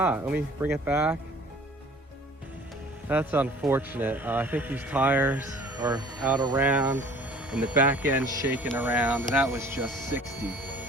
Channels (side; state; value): both; normal; correlation 0.50